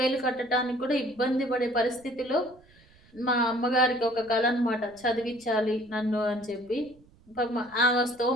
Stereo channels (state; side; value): noise; right; rumble, 28 dB below the sound